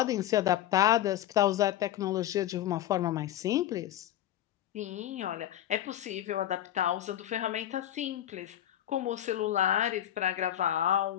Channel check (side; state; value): right; quieter; 12.1 dB